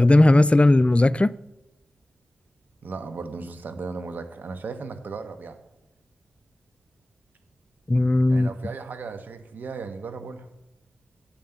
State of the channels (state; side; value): normal; both; correlation 0.98